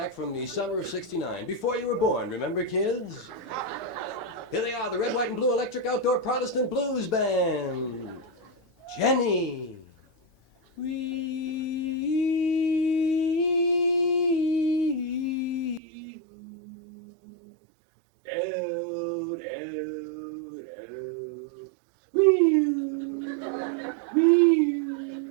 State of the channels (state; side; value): drops out; left; at 15.8 s